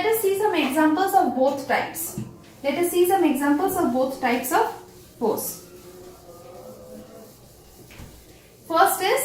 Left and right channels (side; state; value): both; identical; correlation 1.00